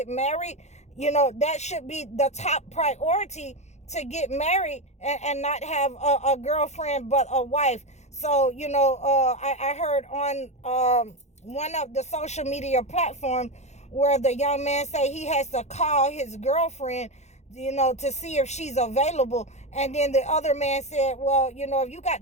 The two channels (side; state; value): right; late; 0.33 ms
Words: married. That should be the top priority, to get married and not have a girlfriend but a wife. So, I heard on one of the social media platforms where the young man say he has to call his girlfriend, to see if she's available. And then the other man said, well, if you got